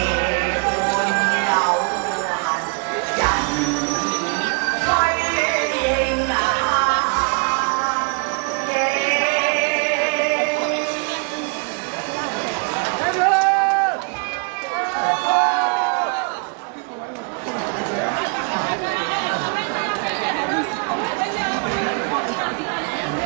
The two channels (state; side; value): quieter; left; 35.1 dB